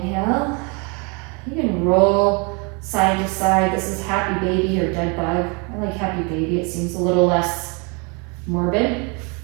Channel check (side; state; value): left; quieter; 32.3 dB